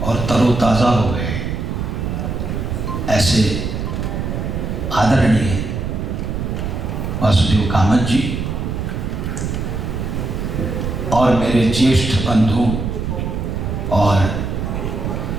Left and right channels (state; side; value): noise; right; rumble, 3 dB below the sound